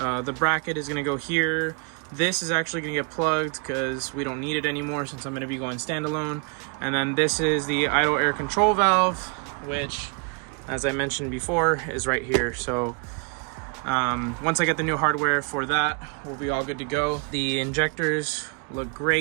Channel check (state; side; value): quieter; left; 36.5 dB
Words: bracket is going to go here. This is actually going to get plugged because we don't need it anymore since I'm going to be going standalone. And then this is the idle air control valve, which, as I mentioned before, is right here. So once I get the new hardware for that, we'll be all good to go. The injectors look